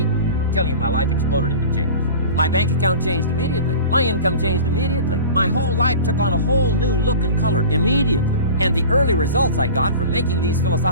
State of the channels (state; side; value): inverted; both; correlation -0.37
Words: I'm telling you, my life exploded into change. My bank account changed immediately. My income changed immediately. My whole life took on a whole new look and color immediately. And the early results I got from making these